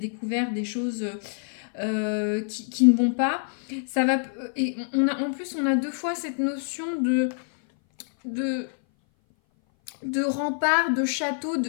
des choses qui ne vont pas. Ça va, et en plus, on a deux fois cette notion de, de rempart, de château,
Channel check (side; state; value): right; silent; 58 dB below the other